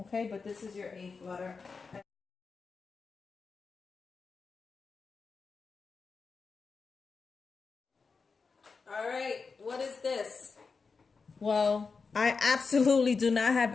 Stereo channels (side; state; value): right; quieter; 4.8 dB